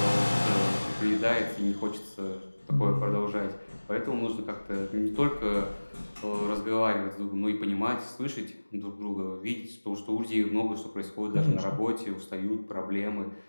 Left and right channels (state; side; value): inverted; both; correlation -1.00